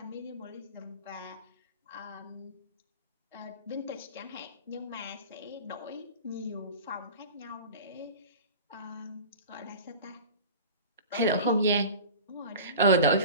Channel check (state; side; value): inverted; both; correlation -0.36